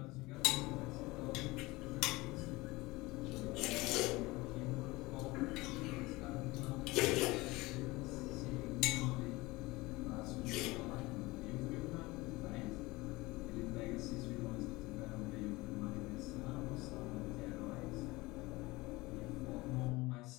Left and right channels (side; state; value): right; quieter; 21.5 dB